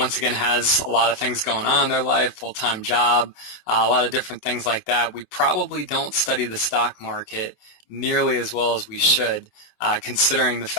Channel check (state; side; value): late; right; 27 ms